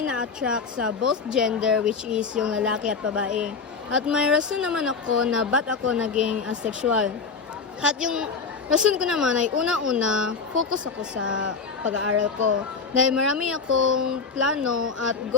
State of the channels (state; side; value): quieter; right; 5.1 dB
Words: na-attract sa both gender, which is yung lalaki at babae. At may rason naman ako na ba't ako naging asexual. At yung rason ko naman ay una-una, focus ako sa pag-aaral ko. Dahil marami akong plano at